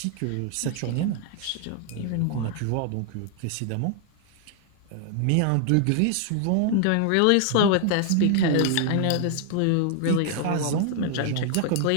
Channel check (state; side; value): different; both; correlation 0.00